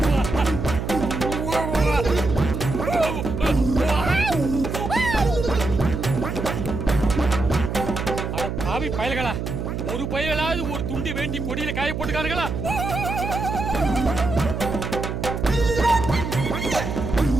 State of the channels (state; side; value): noise; right; hum, 4 dB below the sound